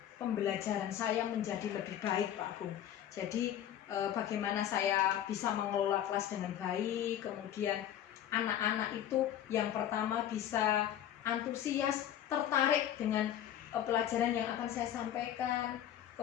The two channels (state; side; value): quieter; right; 10.9 dB